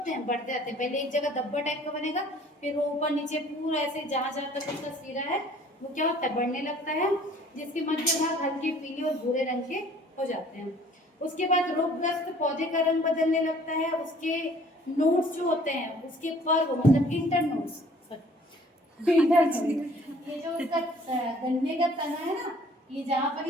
हैं, बढ़ते जाते हैं। पहले एक जगह धब्बा टाइप का बनेगा, फिर वो ऊपर नीचे पूरा ऐसे जहां जहां तक उसका सिरा है वो क्या होता है, बढ़ने लगता है, जिसके मध्य भाग हल्के पीले और भूरे रंग के हो जाते हैं। उसके बाद रोगग्रस्त पौधे का रंग बदलने लगता है, उसके नोड्स जो होते हैं, उसके पर्व मतलब इंटर नोड्स, ये जो उसका गन्ने का तना है ना, ये जहाँ पर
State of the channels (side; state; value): both; normal; correlation 0.55